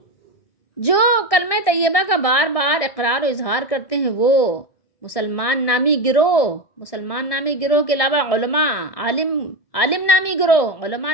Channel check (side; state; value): right; late; 1.7 ms